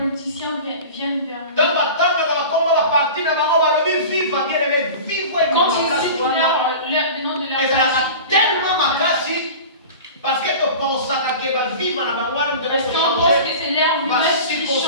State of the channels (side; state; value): both; inverted; correlation -0.36